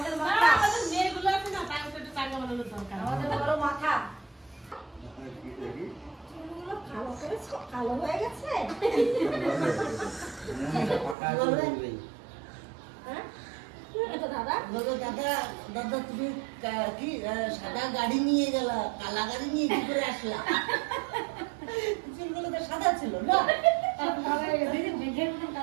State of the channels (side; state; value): left; drops out; at 11.2 s